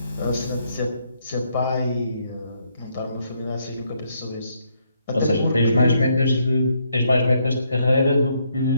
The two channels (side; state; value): both; inverted; correlation -0.74